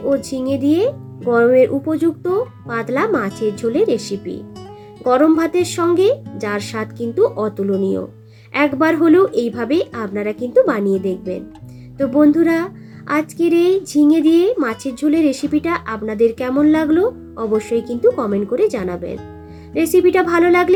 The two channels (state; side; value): identical; both; correlation 1.00